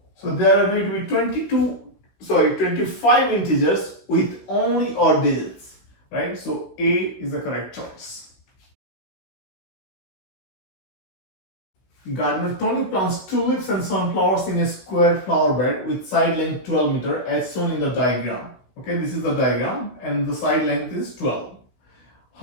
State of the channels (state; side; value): late; right; 16 ms